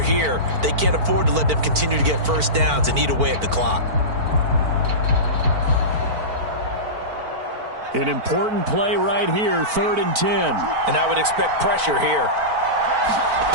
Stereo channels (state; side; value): late; left; 4.5 ms